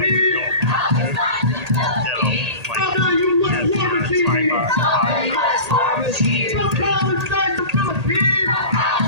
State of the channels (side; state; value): left; late; 1.8 ms